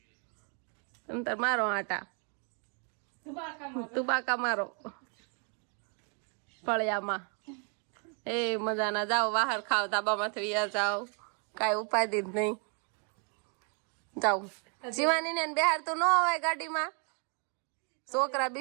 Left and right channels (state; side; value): quieter; left; 39.6 dB